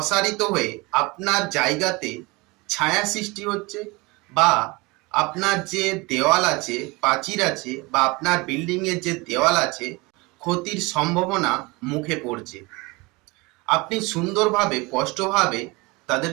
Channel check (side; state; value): left; quieter; 24.7 dB